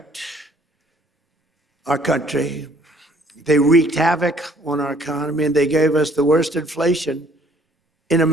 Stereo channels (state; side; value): normal; both; correlation 0.60